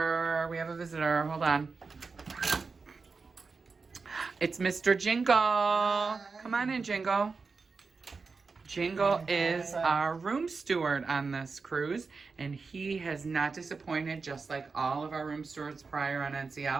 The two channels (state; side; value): quieter; left; 4.6 dB